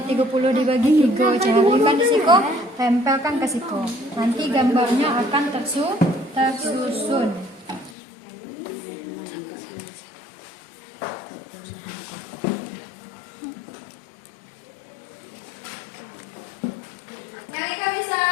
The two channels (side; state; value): right; drops out; at 8.0 s